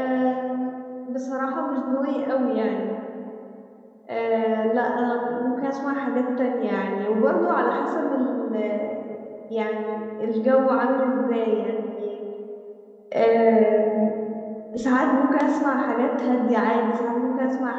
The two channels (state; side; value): identical; both; correlation 1.00